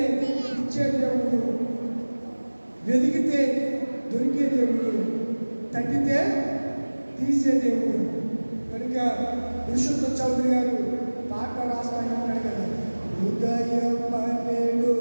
ఇచ్చే దేవుడు, వెతికితే దొరికే దేవుడు, తట్టితే తీసే దేవుడు. కనుక పురుషోత్తం చౌదరి గారు పాట రాస్తాయి అంటాడు కదా, ఉదయం పన్నెండు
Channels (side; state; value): both; inverted; correlation -1.00